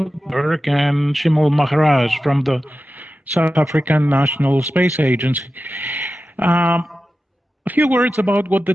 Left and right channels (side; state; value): both; normal; correlation 0.93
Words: and Shimul Maharaj from the South African National Space Agency. A few words about what the